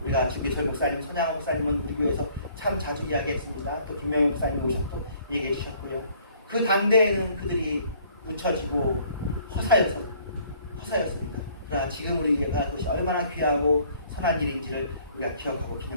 우리가 주기철 목사님, 손양호 목사님은 우리 교회에서 참 자주 이야기했습니다. 또 김명희 목사님이 오셔서 얘기해 주셨고요. 그 당대에는 그들이 묻혀지고 허사였습니다. 그러나 지금 우리가 그것이 얼마나 귀하고 선한 일인지를 우리가 기억하고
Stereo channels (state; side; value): inverted; both; correlation -0.59